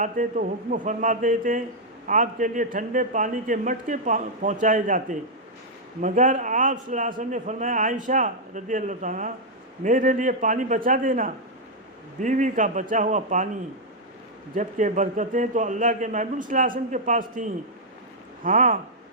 तो हुक्म फरमाते थे, आपके लिए ठंडे पानी के मटके पहुँचाए जाते, मगर आप सल्लल्लाहु ने फरमाया, आयशा रज़ियल्लाहु अन्हा, मेरे लिए पानी बचा देना। बीवी का बचा हुआ पानी, जबकि बरकतें तो अल्लाह के महबूब सल्लल्लाहु अलैहि वसल्लम के पास थीं। हाँ,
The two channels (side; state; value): both; normal; correlation -0.04